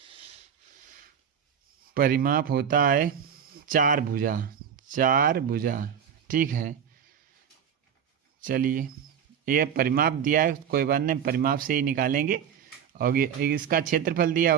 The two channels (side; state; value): left; quieter; 8.2 dB